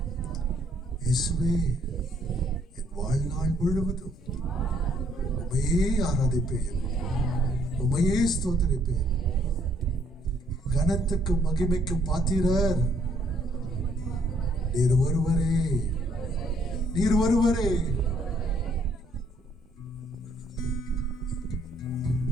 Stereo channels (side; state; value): both; normal; correlation 0.67